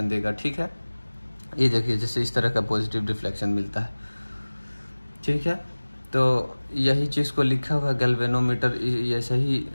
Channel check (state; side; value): inverted; both; correlation -1.00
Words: देगा। ठीक है, ये देखिए जैसे इस तरह का पॉजिटिव डिफ्लेक्शन मिलता है। ठीक है, तो यही चीज़ को लिखा हुआ गैल्वेनोमीटर ऐसे ही